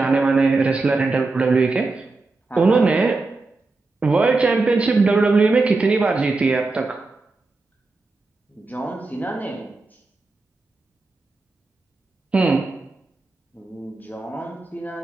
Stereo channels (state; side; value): quieter; left; 3.6 dB